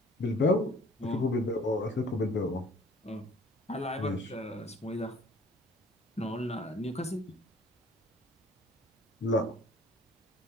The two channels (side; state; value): both; normal; correlation 0.53